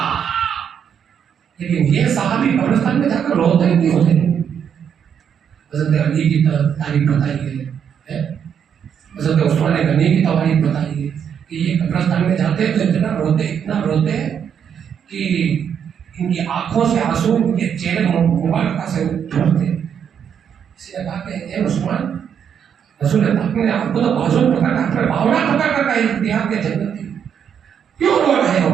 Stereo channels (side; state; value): left; quieter; 8.0 dB